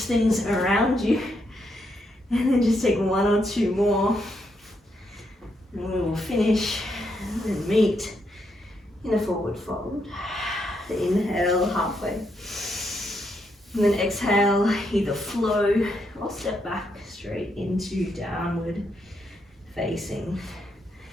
things around you. And then just take one or two more. And we will finish and meet in a forward fold. Inhale, halfway. And then exhale, either flow or step back straight into downward facing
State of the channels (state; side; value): normal; both; correlation 0.79